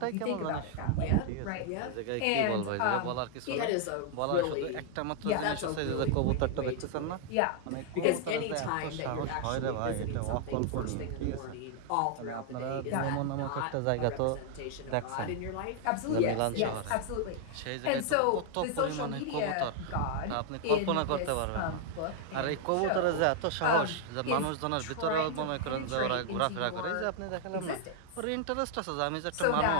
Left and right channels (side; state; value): both; different; correlation 0.00